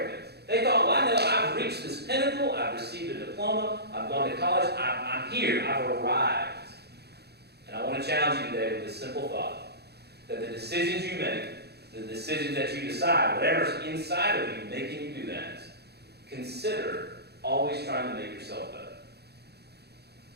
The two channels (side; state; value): left; late; 0.48 ms